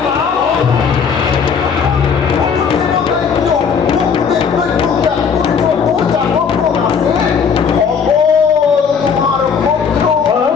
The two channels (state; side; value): quieter; right; 6.4 dB